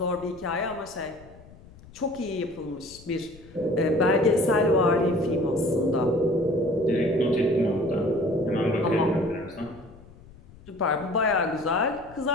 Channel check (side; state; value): left; noise; rumble, 22 dB below the sound